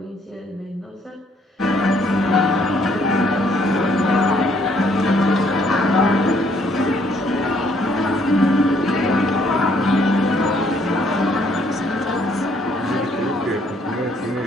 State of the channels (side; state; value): both; normal; correlation 0.66